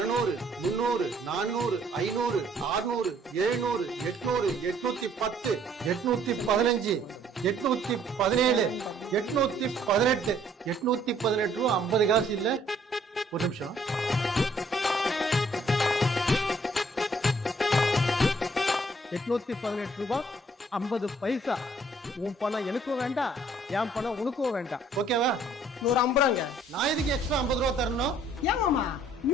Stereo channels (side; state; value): both; normal; correlation 0.62